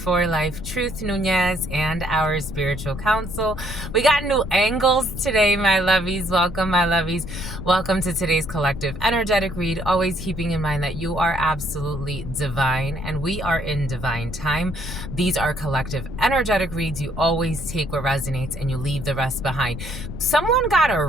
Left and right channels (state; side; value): noise; left; rumble, 9 dB below the sound